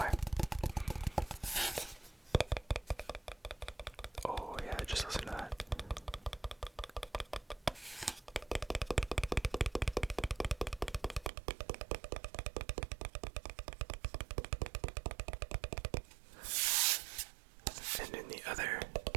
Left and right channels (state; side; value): drops out; left; at 11.3 s